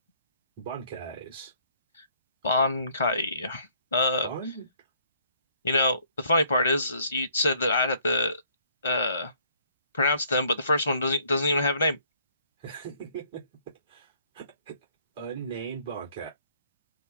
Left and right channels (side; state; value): both; inverted; correlation -0.64